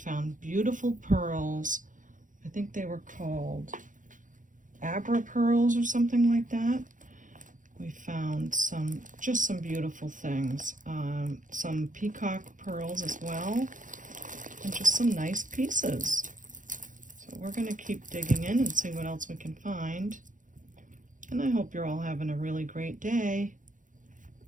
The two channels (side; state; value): left; late; 0.38 ms